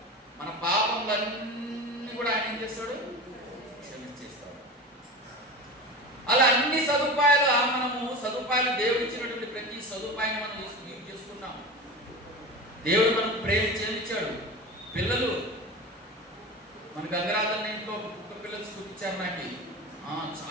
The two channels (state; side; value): normal; both; correlation 0.29